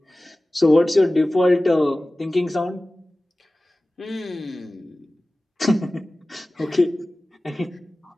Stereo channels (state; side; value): normal; both; correlation 0.97